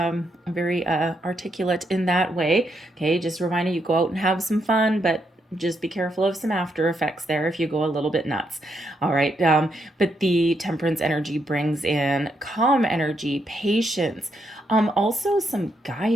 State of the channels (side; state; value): both; normal; correlation 0.78